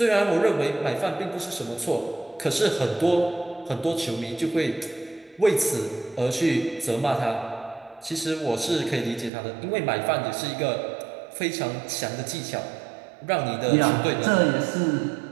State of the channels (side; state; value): left; drops out; at 9.3 s